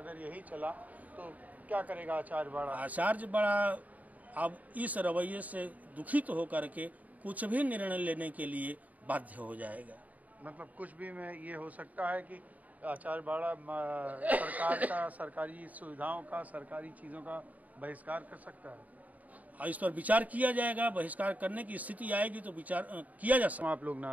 यही चला तो क्या करेगा आचार्य बाड़ा? आचार्य बाड़ा अब इस रवैये से दुखित होकर के कुछ भी निर्णय लेने के लिए बाध्य हो जाएगा। मतलब कुछ भी में ये हो सकता है कि आचार्य बाड़ा सरकार का, सरकारी सुविधाओं का, सरकारी चीज़ों का बहिष्कार कर सकता है। इस पर विचार किया जाएगा। बहिष्कार करने की स्थिति आएगी तो विचार किया जा सकता है। आप लोग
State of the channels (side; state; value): left; late; 0.074 ms